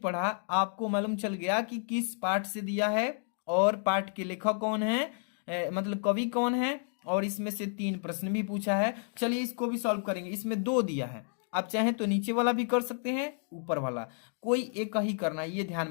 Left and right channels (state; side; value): silent; right; 57 dB below the other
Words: आपको मालूम चल गया कि किस पाठ से दिया है और पाठ के लेखक कौन है, मतलब कवि कौन है, और इसमें से 3 प्रश्न भी पूछा है। चलिए इसको भी सॉल्व करेंगे। इसमें 2 दिया है, आप चाहें तो नीचे वाला भी कर सकते हैं, ऊपर वाला, कोई एक ही करना है, ये